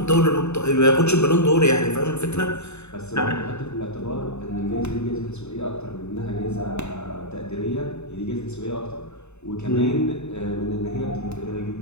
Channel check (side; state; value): right; late; 0.81 ms